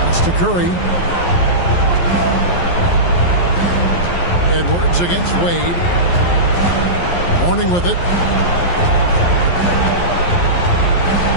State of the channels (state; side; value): late; right; 11 ms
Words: That's to Curry. Edwards against Wade. Horning with it.